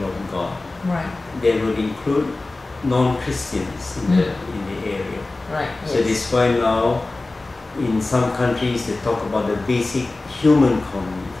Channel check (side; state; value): right; quieter; 3.2 dB